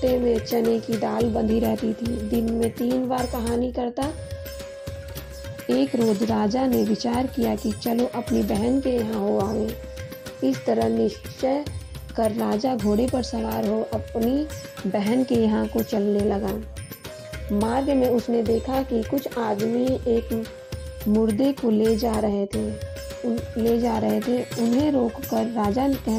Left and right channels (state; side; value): identical; both; correlation 1.00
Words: में चने की दाल बंधी रहती थी। दिन में 3 बार कहानी करता। एक रोज राजा ने विचार किया कि चलो अपनी बहन के यहाँ हो आवे। इस तरह निश्चय कर राजा घोड़े पर सवार हो अपनी बहन के यहाँ को चलने लगा। मार्ग में उसने देखा कि कुछ आदमी एक मुर्दे को ले जा रहे थे। उन्हें रोककर राजा